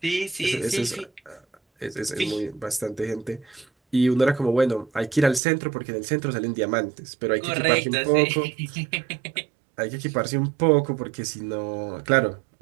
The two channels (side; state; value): left; drops out; at 5.4 s